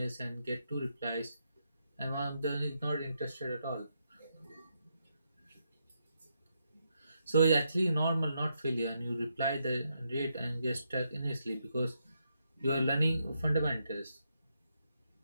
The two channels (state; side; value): inverted; both; correlation -0.80